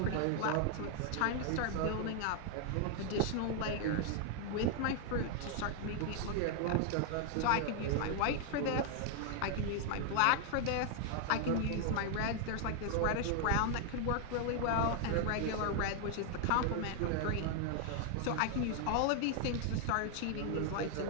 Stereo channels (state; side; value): different; both; correlation 0.00